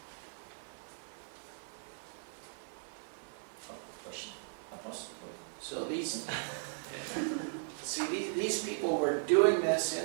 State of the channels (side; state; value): left; silent; 53 dB below the other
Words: Вопрос? So these people were doing this